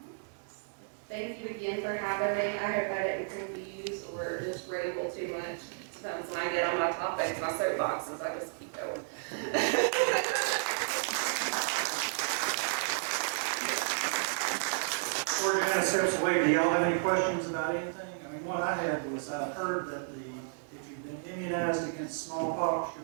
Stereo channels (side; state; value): left; silent; 56 dB below the other